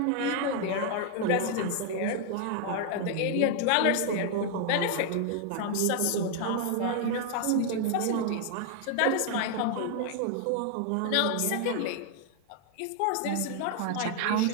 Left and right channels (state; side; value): different; both; correlation 0.00